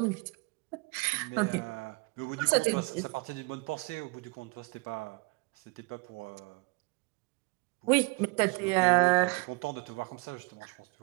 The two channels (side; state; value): left; quieter; 28.8 dB